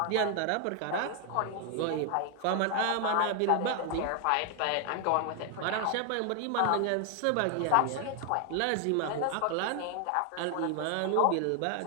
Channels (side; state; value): both; different; correlation 0.00